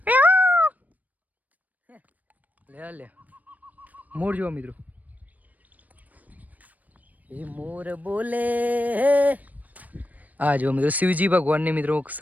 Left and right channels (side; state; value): left; late; 0.077 ms